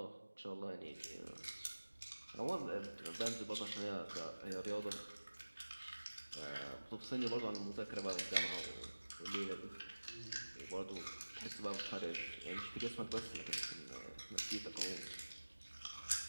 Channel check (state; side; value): inverted; both; correlation -1.00